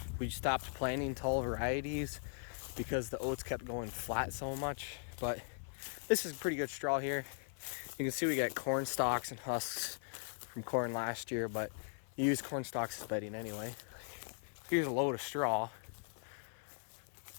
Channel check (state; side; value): silent; right; 52 dB below the other